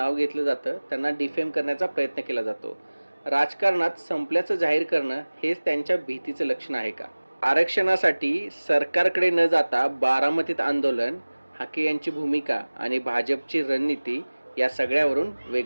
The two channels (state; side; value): inverted; both; correlation -1.00